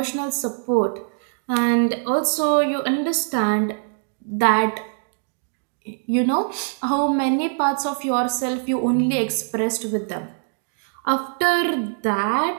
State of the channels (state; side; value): silent; left; digital silence